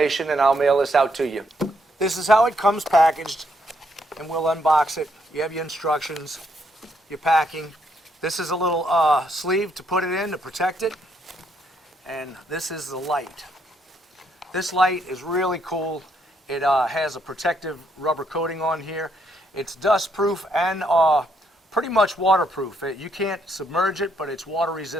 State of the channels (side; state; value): both; normal; correlation 0.74